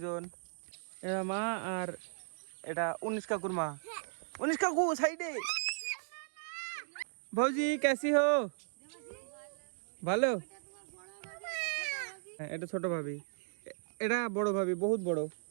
এটা মা আর এটা 19 কাকুর মা। 19 কাকু সাইডে। ভৌজি कैसी हो? ভালো। হ্যাঁ এটা ছোট ভাবি, এটা বড় ভাবি, বহুত বড়।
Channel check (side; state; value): left; silent; digital silence